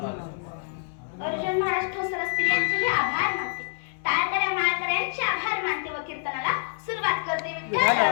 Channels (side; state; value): right; silent; 61 dB below the other